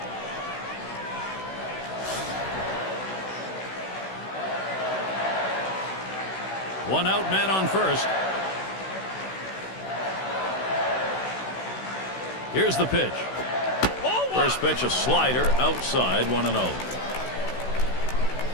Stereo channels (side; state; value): right; late; 16 ms